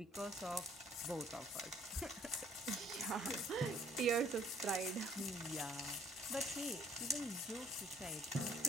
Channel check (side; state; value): both; normal; correlation 0.61